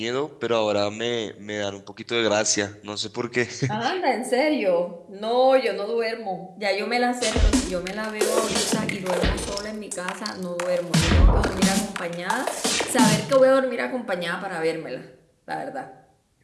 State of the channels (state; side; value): identical; both; correlation 1.00